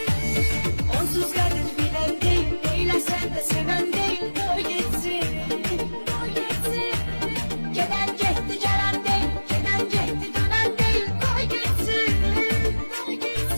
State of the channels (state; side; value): inverted; both; correlation -1.00